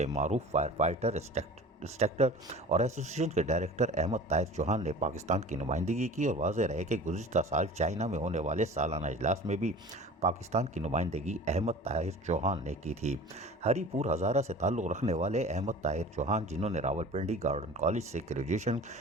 मारूफ फायर फाइटर इंस्ट्रक्टर और एसोसिएशन के डायरेक्टर अहमद ताहिर चौहान ने पाकिस्तान की नुमाइंदगी की और वाज़ेह रहे कि गुज़िश्ता साल चाइना में होने वाले सालाना इजलास में भी पाकिस्तान की नुमाइंदगी अहमद ताहिर चौहान ने की थी। हरीपुर हज़ारा से ताल्लुक़ रखने वाले अहमद ताहिर चौहान, जिन्होंने रावलपिंडी गार्डन कॉलेज से ग्रेजुएशन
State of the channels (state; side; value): normal; both; correlation 0.40